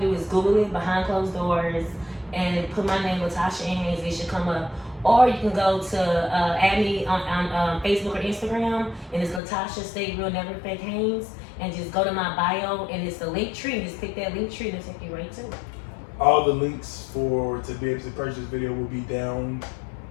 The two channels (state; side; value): drops out; right; at 9.4 s